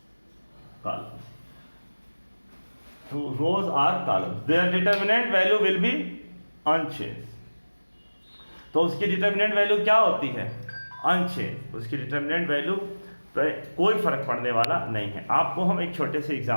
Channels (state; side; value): inverted; both; correlation -1.00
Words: columns, to rows or columns, their determinant value will be unchanged। तो उसकी determinant value क्या होती है, unchange. उसकी determinant value कोई फर्क पड़ने वाला नहीं है। आपको हम एक छोटे से